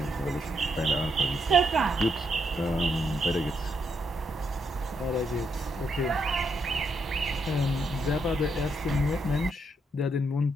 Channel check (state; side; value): normal; both; correlation 0.78